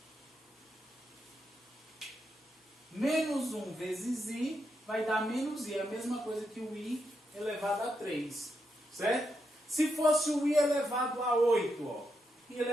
Menos 1 vezes I vai dar menos I. É a mesma coisa que o I elevado a 3. Certo? Se fosse o I elevado a 8, ó. I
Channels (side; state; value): both; normal; correlation 0.83